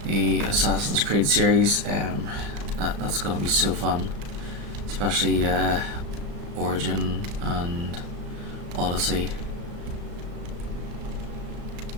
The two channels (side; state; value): left; late; 35 ms